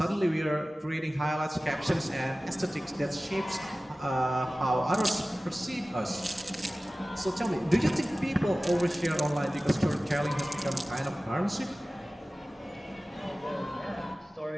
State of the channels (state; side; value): normal; both; correlation 0.97